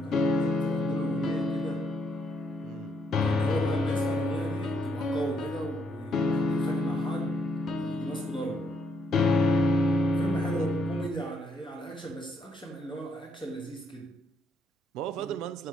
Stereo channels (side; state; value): both; normal; correlation 0.74